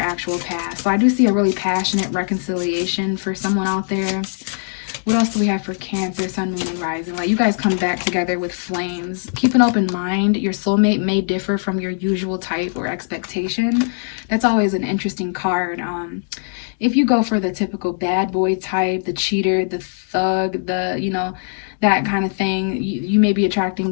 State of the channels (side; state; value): right; silent; digital silence